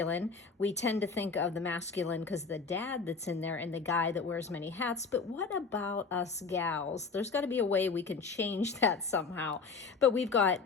We tend to think of the masculine because the dad that's in there and the guy that wears many hats, but what about us gals? There's got to be a way we can change that somehow. But we've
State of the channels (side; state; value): right; quieter; 4.8 dB